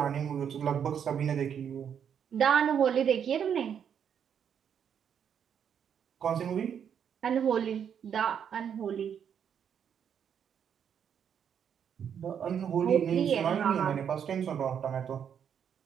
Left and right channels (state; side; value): quieter; left; 8.2 dB